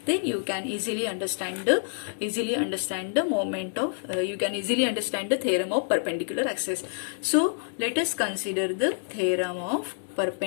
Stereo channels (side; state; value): right; silent; digital silence